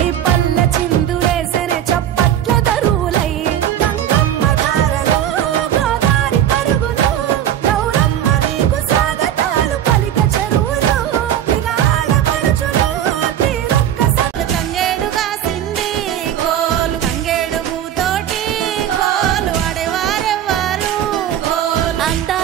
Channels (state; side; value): quieter; left; 10.8 dB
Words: పల్ల చిందులేసెనే చప్పట్ల దరువులై గంగమ్మ దారలో గోదారి పరుగులు గౌరమ్మ నీకు స్వాగతాలు పలిక చెరువులు ఇక ఆడపడుచులు తీరొక్క తంగేడుగా సింది కోలు తంగేడు పూతోటి కోలు ఆడేవారెవ్వారు కోలు